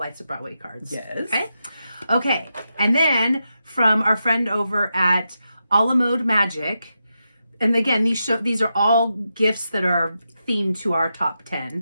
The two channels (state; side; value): inverted; both; correlation -0.87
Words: of Broadway cards. Yes. Okay. And then from our friend over at Alamode Magic, and again, these are all gifts that are themed to our top